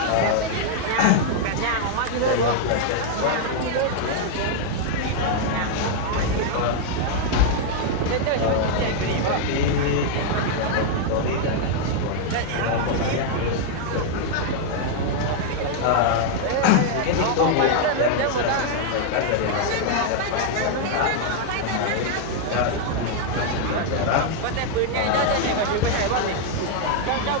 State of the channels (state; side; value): different; both; correlation -0.01